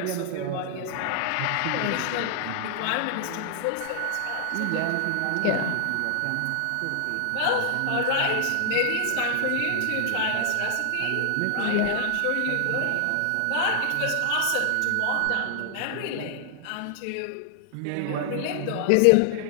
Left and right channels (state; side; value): different; both; correlation 0.00